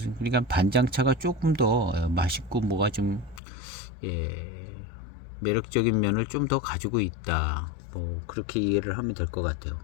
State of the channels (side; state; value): right; drops out; at 3.4 s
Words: 그러니까 반장차가 조금 더 맛있고 뭐가 좀 매력적인 면을 좀 더 가지고 있다. 뭐 그렇게 이해를 하면 될 것 같아요.